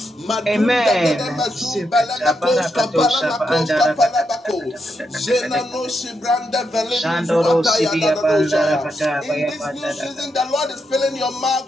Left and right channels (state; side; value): normal; both; correlation 0.82